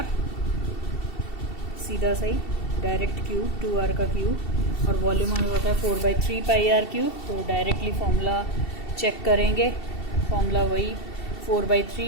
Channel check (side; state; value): right; late; 2.7 ms